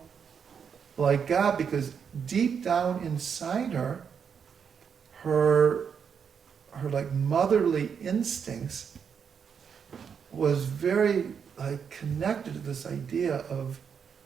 like God, because deep down inside her, her like motherly instincts was very like connected to this idea of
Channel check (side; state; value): left; quieter; 6.9 dB